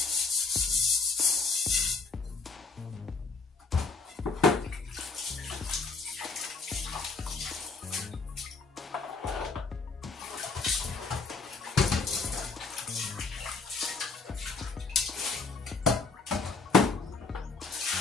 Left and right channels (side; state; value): right; quieter; 4.4 dB